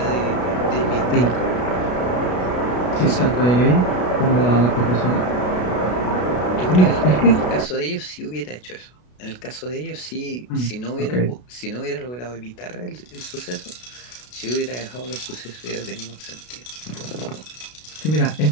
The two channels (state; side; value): late; right; 33 ms